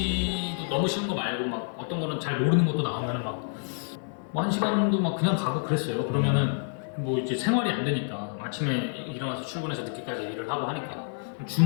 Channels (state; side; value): silent; right; digital silence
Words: 너무 쉬운 거 말고 막 어떤 거는 잘 모르는 것도 나오면은 막 뭐 1시간도 막 그냥 가고 그랬어요. 그러면은 뭐 이제 생활이 안 되니까 아침에 일어나서 출근해서 늦게까지 일을 하고 하니까